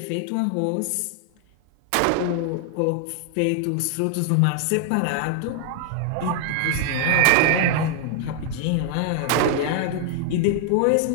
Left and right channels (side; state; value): both; different; correlation 0.00